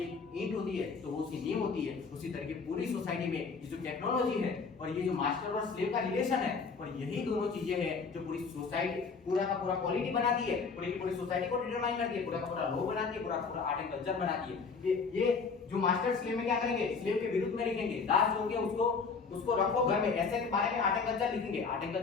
एक ईंट होती है तो वो उसकी नींव होती है, उसी तरीके पूरी सोसाइटी में ये जो टेक्नोलॉजी है और ये जो मास्टर और स्लेव का रिलेशन है, और यही दोनों चीजें हैं जो पूरी सोसाइटी पूरा का पूरा क्वालिटी बनाती है, पूरी सोसाइटी को डिटरमाइन करती है, पूरा का पूरा लॉ बनाती है, पूरा का पूरा आर्ट एंड कल्चर बनाती है। ये जो मास्टर स्लेव में क्या करेंगे, स्लेव के विरुद्ध में लिखेंगे, दास हो गया उसको रखो घर में, ऐसे के बारे में आर्ट एंड कल्चर लिखेंगे। आर्ट एंड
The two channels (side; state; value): right; quieter; 5.0 dB